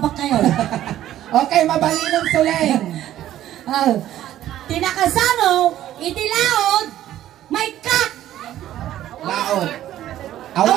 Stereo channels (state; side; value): quieter; left; 12.8 dB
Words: kayo? Okay, mabaling ng Suleng. Tinakasano, itilaod, may kak. Laod.